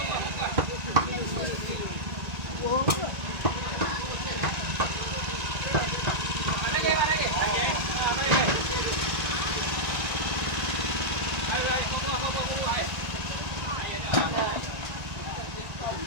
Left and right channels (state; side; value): late; left; 1.9 ms